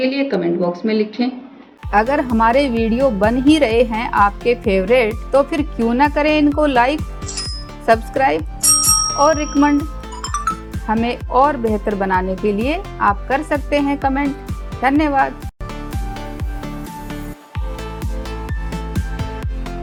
लिए कमेंट बॉक्स में लिखें। अगर हमारे वीडियो बन ही रहे हैं आपके फेवरेट, तो फिर क्यों ना करें इनको लाइक, सब्सक्राइब और रिकमेंड। हमें और बेहतर बनाने के लिए आप कर सकते हैं कमेंट। धन्यवाद।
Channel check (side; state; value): both; identical; correlation 1.00